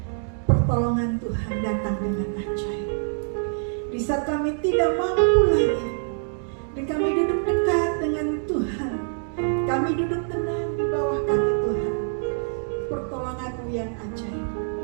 pertolongan Tuhan datang dengan ajaib. Di saat kami tidak mampu lagi, di kami duduk dekat dengan Tuhan, kami duduk tenang di bawah kaki Tuhan, pertolongan-Mu yang ajaib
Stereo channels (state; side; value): silent; left; digital silence